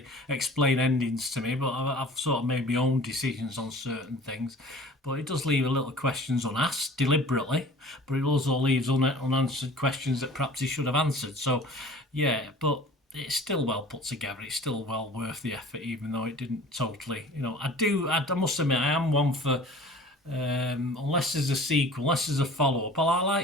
explain endings to me, but I've sort of made my own decisions on certain things. But it does leave a little questions unasked deliberately, but it also leaves unanswered questions that perhaps he should have answered. So, yeah, but it's still well put together. It's still well worth the effort, even though it didn't totally. I must admit, I am one for. Unless there's a sequel, unless there's a follow-up, I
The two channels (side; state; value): both; normal; correlation 0.44